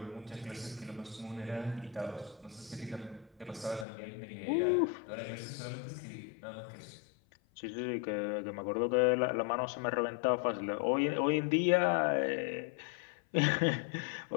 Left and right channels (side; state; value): right; drops out; at 3.9 s